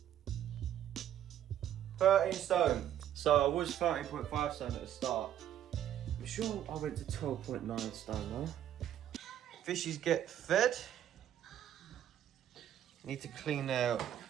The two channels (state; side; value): quieter; left; 10.9 dB